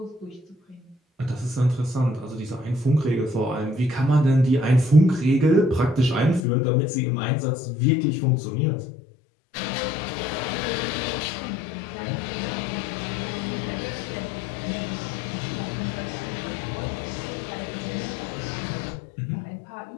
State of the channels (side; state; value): right; drops out; at 6.4 s